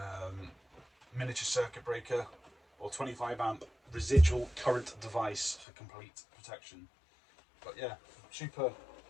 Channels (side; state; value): right; drops out; at 5.7 s